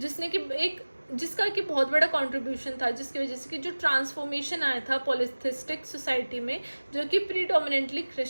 जिसका कि बहुत बड़ा कंट्रीब्यूशन था, जिसकी वजह से कि जो ट्रांसफॉर्मेशन आया था पॉलिथिस्टिक सोसाइटी में, जो कि प्रीडोमिनेंटली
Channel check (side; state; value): both; inverted; correlation -1.00